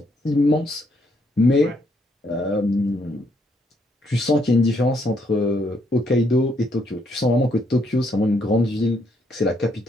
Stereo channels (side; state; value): both; normal; correlation 0.73